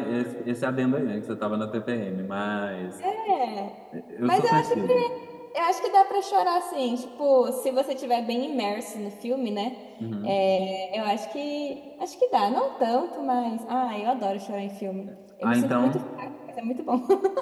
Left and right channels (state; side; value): identical; both; correlation 1.00